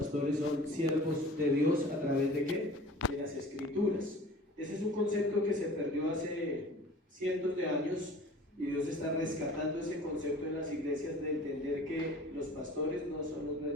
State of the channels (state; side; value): normal; both; correlation 0.45